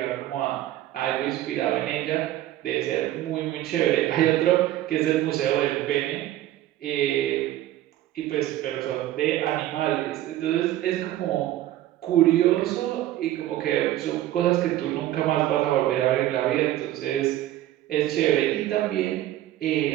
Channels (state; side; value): quieter; left; 13.9 dB